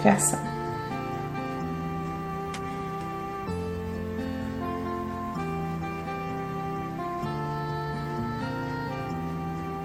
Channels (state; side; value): identical; both; correlation 1.00